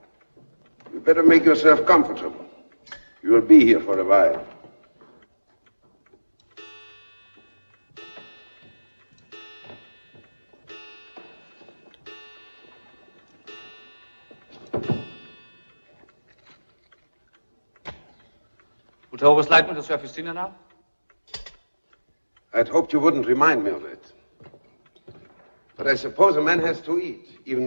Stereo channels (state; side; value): inverted; both; correlation -1.00